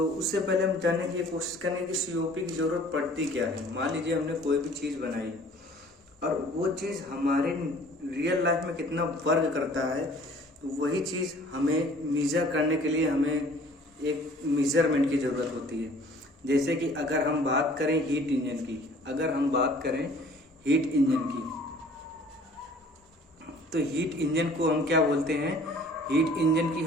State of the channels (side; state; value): both; normal; correlation 0.52